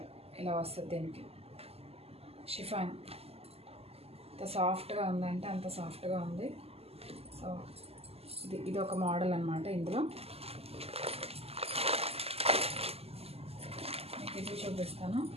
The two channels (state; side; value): late; left; 0.29 ms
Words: ఇలా వస్తుంది దీనికి. షిఫాన్ అంత సాఫ్ట్గా ఉందంటే అంత సాఫ్ట్గా ఉంది. సో ఇది ఒక మోడల్ అన్నమాట. ఇందులో మీకు ఇది చూపిస్తాను.